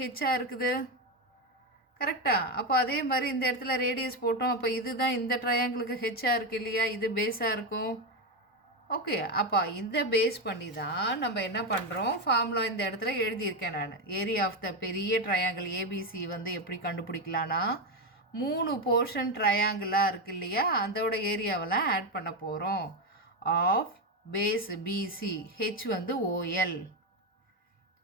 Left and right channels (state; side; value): normal; both; correlation 0.11